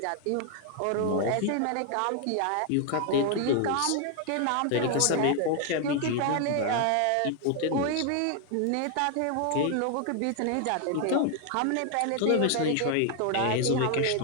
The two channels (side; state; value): both; different; correlation 0.00